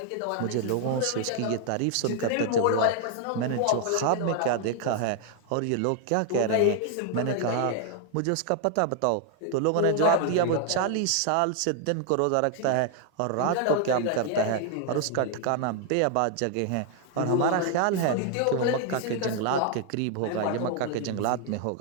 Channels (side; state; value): both; different; correlation 0.00